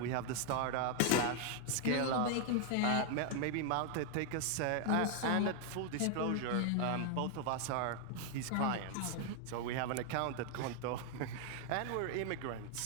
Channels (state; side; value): different; both; correlation 0.00